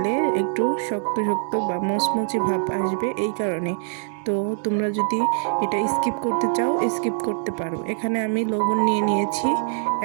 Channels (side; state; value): left; silent; 63 dB below the other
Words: একটু শক্ত শক্ত বা মচমচে ভাব আসবে, এই কারণে। তো তোমরা যদি এটা স্কিপ করতে চাও স্কিপ করতে পারো। এখানে আমি লবণ নিয়ে নিয়েছি,